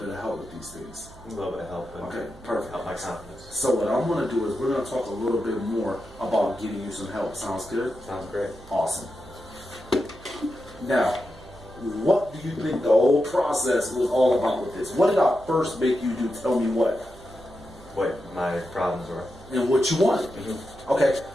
of help with these things? A little bit of help. Okay, perfect. Help my confidence. So what I'm going to do is we're going to talk a little bit more about getting you some help. Sounds good? Sounds great. Awesome. Now, what do you think the whole process was all about with this? What did I first make you do? Tell me what. What my problems were. And what you wanted. Okay,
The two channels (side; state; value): right; noise; hum, 21 dB below the sound